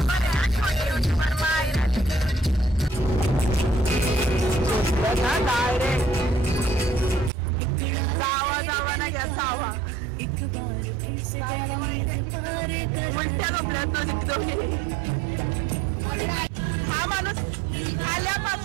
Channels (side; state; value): left; drops out; at 7.3 s